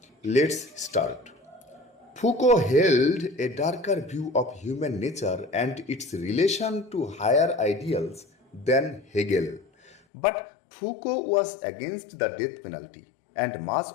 Let's start. Foucault held a darker view of human nature and its relation to higher ideals than Hegel. But Foucault was against the death penalty, and much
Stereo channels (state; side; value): drops out; right; at 10.0 s